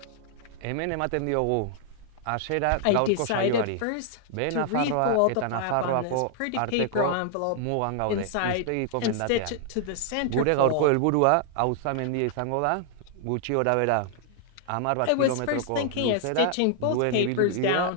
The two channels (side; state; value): both; different; correlation 0.00